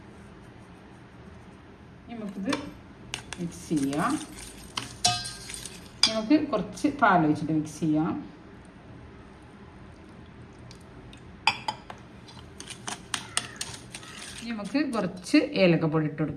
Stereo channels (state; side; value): identical; both; correlation 1.00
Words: നമുക്കിത് മിക്സ് ചെയ്യാം. നമുക്ക് കുറച്ച് പാൽ ഒഴിച്ചിട്ട് മിക്സ് ചെയ്യാം. നമുക്ക് കുറച്ച് ഏലക്കപ്പൊടി ഇട്ട്